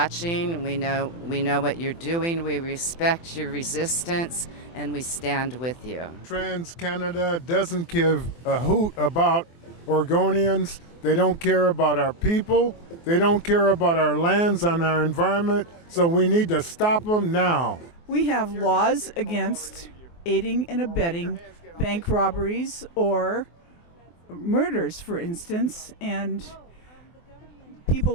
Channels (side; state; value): right; late; 24 ms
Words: We know what you're doing. We respect your resistance, and we stand with you. TransCanada doesn't give a hoot about Oregonians. They don't care about our people. They don't care about our lands and our environment. So we need to stop them now. We have laws against aiding and abetting bank robberies or murders, for instance, and